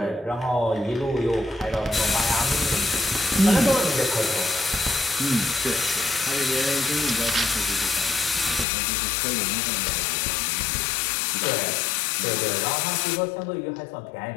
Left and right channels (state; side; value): drops out; right; at 8.7 s